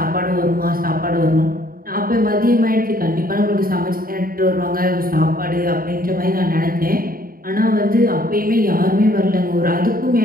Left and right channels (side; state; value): left; late; 0.42 ms